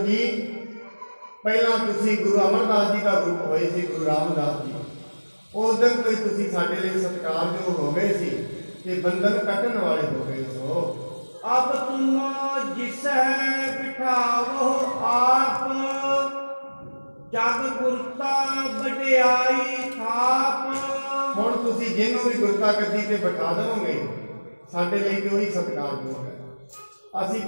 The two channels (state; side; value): inverted; both; correlation -1.00